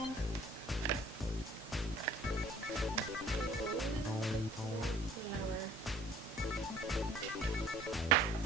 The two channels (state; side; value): normal; both; correlation 0.53